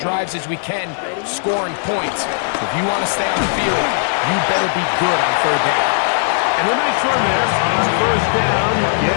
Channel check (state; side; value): silent; right; 68 dB below the other